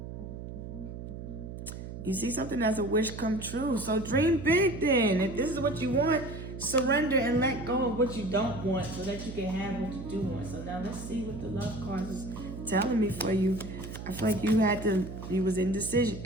you see something as a wish come true. So dream big then. If this is what you want, surrender and let go of what you don't want so that you can have what you do want. So now let's see what the love cards is telling me for you. I feel like you was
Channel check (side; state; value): right; noise; hum, 9 dB below the sound